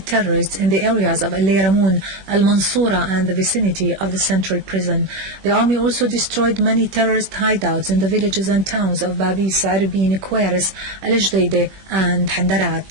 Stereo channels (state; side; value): late; left; 21 ms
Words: in the areas of Al-Yaramoun, Al-Mansoura and the vicinity of the central prison. The army also destroyed many terrorist hideouts in the villages and towns of Babis, Arbin, Kweris, Al-Jdeide and